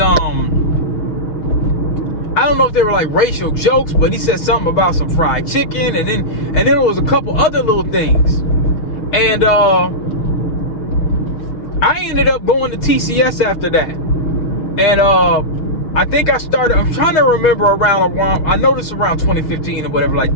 I I don't know if they were like racial jokes, but he said something about some fried chicken, and then there was a couple other little things. And I ended up going to TCS after that. And I think I started, I'm trying to remember around, I noticed around 2015 or whatever like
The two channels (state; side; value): late; right; 6.2 ms